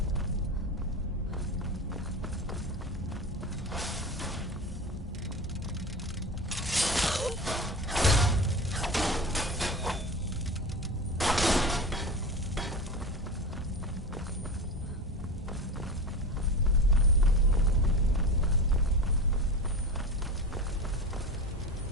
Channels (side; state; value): both; normal; correlation 0.28